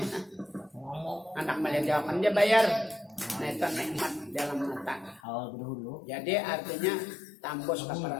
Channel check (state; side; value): drops out; right; at 5.2 s